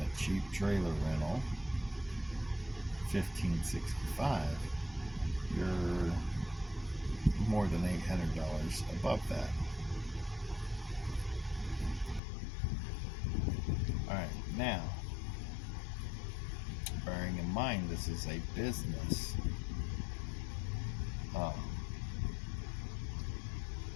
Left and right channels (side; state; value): right; drops out; at 12.2 s